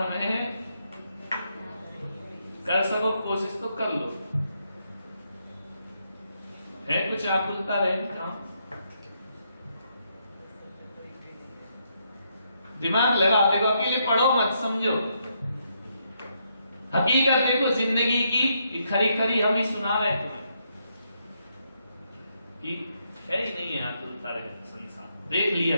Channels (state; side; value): inverted; both; correlation -0.77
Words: में कर सको कोशिश तो कर लो, है कुछ आकुलता रहे दिमाग लगा, देखो अकेले पढ़ो मत, समझो हकीकत देखो जिंदगी की, खरी खरी हम ही सुना रहे तुम्हें कि है ही नहीं है आकुलता रहे संसार, देख लिया